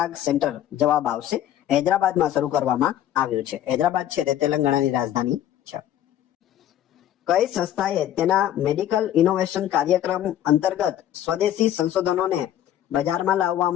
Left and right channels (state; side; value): quieter; right; 11.7 dB